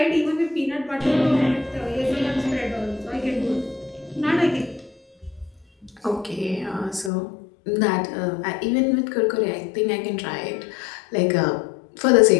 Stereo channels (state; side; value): drops out; right; at 7.1 s